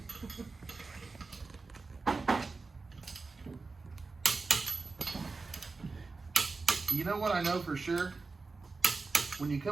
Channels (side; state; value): left; quieter; 4.0 dB